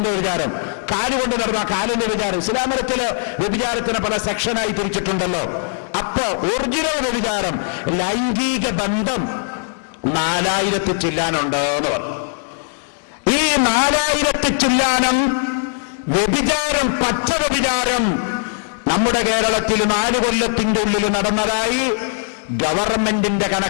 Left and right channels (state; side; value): silent; right; digital silence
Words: വിചാരം, കാലുകൊണ്ട് നടന്ന കാലിന്റെ വിചാരം. ഇസ്ലാമത്തില് വ്യഭിചാരത്തിന് പല സെക്ഷനായി തിരിച്ചിട്ടുണ്ടല്ലോ. അപ്പൊ ഒറിജിനൽ വ്യഭിചാരം ലൈംഗിക ബന്ധം 4000 ചില്ലാനുണ്ട് എന്ന് പറഞ്ഞു. ഈ 4000 ചില്ലാനം വ്യഭിചാരം, പച്ച വ്യഭിചാരം നമ്മുടെ കേരളത്തിൽ 4 കൊല്ലത്തിന്റെ ഉള്ളിൽ നടന്നതായി ഗവൺമെന്റിന്റെ